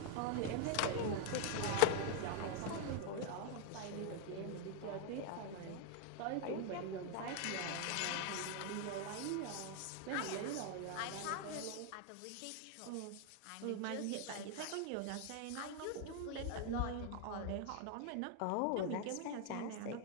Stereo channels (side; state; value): both; different; correlation 0.00